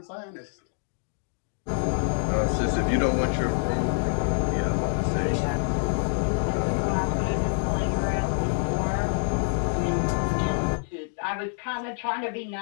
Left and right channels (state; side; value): silent; right; digital silence